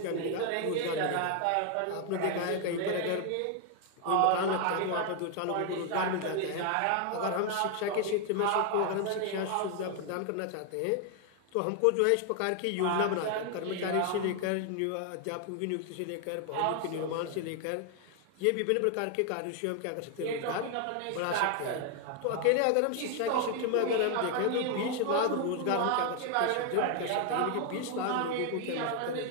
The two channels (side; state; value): both; different; correlation 0.00